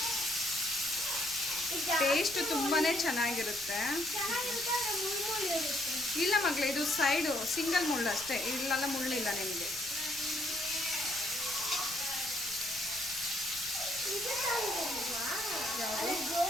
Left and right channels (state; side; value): noise; left; rumble, 21 dB below the sound